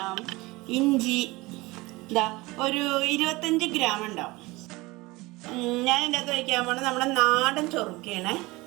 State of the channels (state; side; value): quieter; left; 22.0 dB